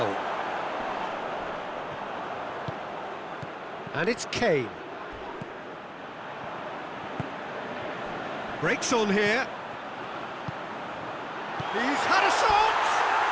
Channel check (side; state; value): both; identical; correlation 1.00